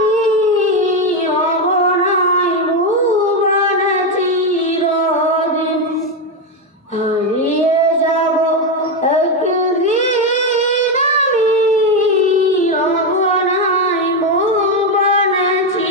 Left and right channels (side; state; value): both; normal; correlation 0.08